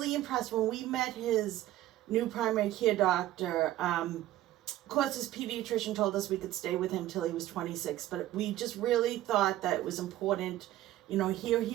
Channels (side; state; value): left; quieter; 14.4 dB